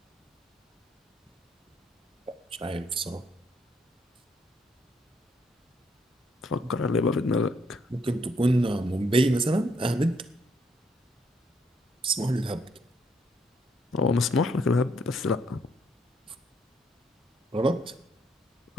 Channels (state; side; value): normal; both; correlation 0.71